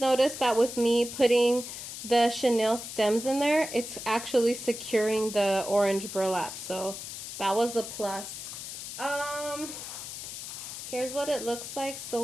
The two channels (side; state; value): left; noise; hiss, 9 dB below the sound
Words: noticed that with me putting the chenille stems in there, it's actually securing the orange burlap. So that was a plus. Here's what it looks like